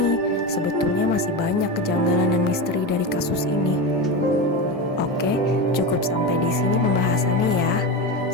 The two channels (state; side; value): normal; both; correlation 0.20